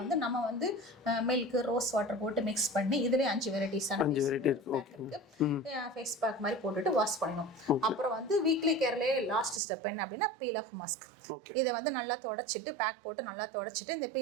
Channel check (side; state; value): left; drops out; at 9.6 s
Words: நம்ம வந்து மில்க், ரோஸ் வாட்டர் போட்டு மிக்ஸ் பண்ணி இதுலேயே 5 வெரைட்டிஸான ஃபேஸ் பேக் மாதிரி போட்டுட்டு வாஷ் பண்ணணும். அப்புறம் வந்து வீக்லி கேர்லேயே லாஸ்ட் ஸ்டெப் என்ன அப்படின்னா பீல் ஆஃப் மாஸ்க். இதை வந்து நல்லா தொடச்சிட்டு பேக் போட்டு நல்லா தொடச்சிட்டு இந்த